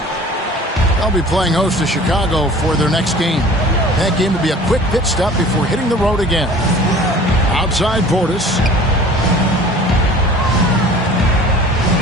They'll be playing host to Chicago for their next game. That game will be a quick pit stop before hitting the road again. Outside Portis.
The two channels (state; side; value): normal; both; correlation 0.45